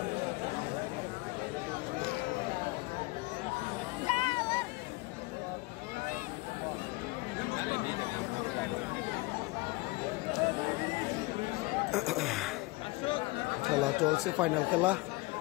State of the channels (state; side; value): quieter; right; 23.1 dB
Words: খেলা চলছে, ফাইনাল খেলা